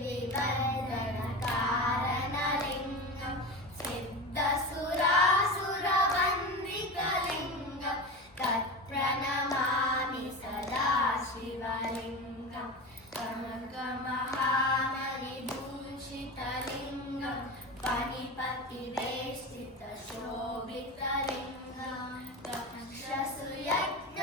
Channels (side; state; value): both; normal; correlation 0.26